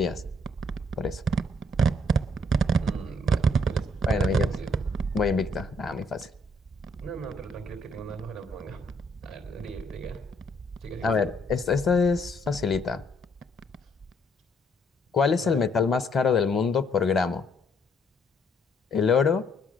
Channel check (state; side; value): normal; both; correlation 0.68